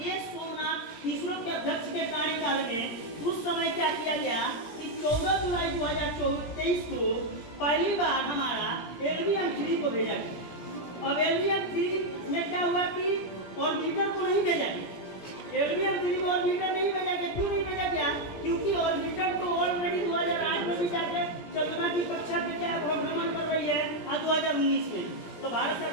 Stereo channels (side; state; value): right; late; 17 ms